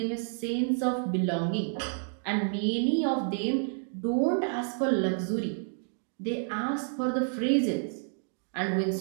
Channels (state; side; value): silent; left; digital silence